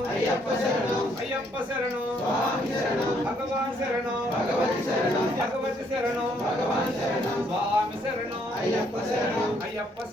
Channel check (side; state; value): both; normal; correlation 0.69